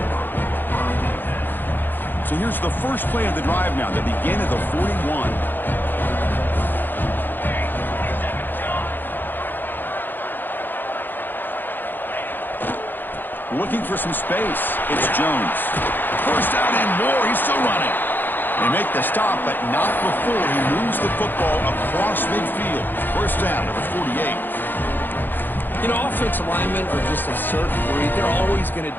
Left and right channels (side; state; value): right; late; 0.092 ms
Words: So here's the first play of the drive now. They begin at the 41. Looking for some space. It's Jones. First down and more. He's still running. They make the stop, but not before he moves the football across midfield. First down, number 48. You know, offensive linemen are just a certain breed. They're always going to